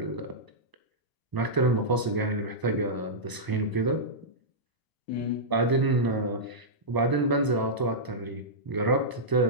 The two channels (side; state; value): left; late; 1.0 ms